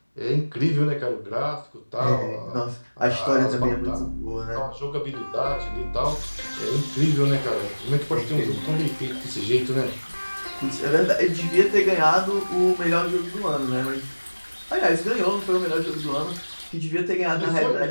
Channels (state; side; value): inverted; both; correlation -1.00